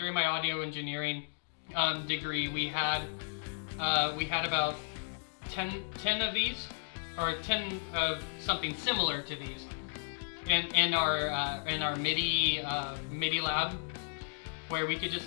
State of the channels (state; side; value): silent; right; digital silence